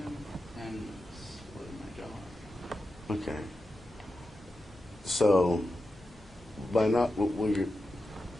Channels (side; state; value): both; normal; correlation 0.90